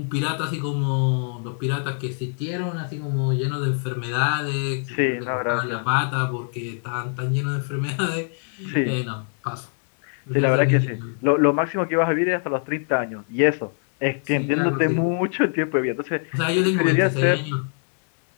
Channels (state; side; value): silent; right; 62 dB below the other